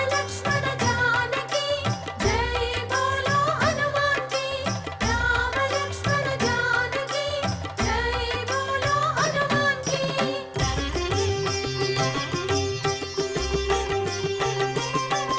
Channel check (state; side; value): identical; both; correlation 1.00